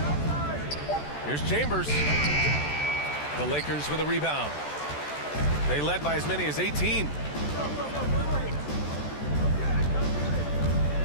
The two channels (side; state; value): right; late; 14 ms